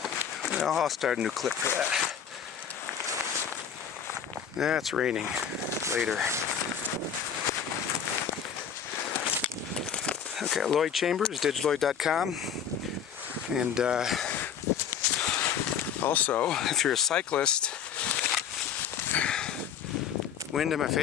Well, I'll start a new clip for that. It's raining later. Okay, Lloyd Chambers, digitaloid.com. And also, if you're a cyclist,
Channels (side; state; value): right; quieter; 7.9 dB